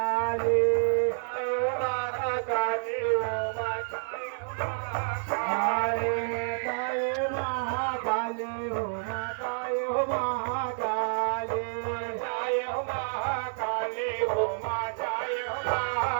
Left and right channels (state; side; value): silent; left; digital silence